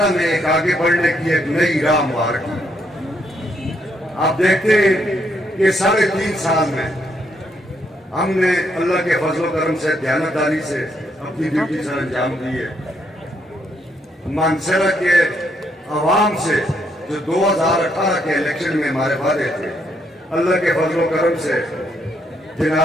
میں ایک آگے بڑھنے کی ایک نئی راہ ہموار کی۔ آپ دیکھتے ہیں کہ 3.5 سال میں ہم نے اللہ کے فضل و کرم سے، دیانتداری سے اپنی ڈیوٹی سر انجام دی ہے۔ مانسہرہ کے عوام سے جو 2018 کے الیکشن میں ہمارے وعدے تھے، اللہ کے فضل و کرم سے،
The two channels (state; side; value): normal; both; correlation 0.74